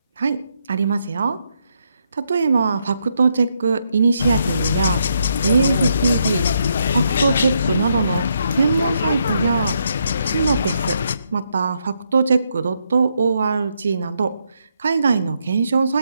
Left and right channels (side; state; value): both; inverted; correlation -0.77